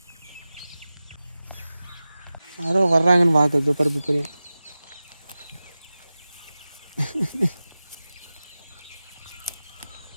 யாரோ வர்றாங்கன்னு பார்க்குறது பருப்பு பெரிய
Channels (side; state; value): both; inverted; correlation -0.96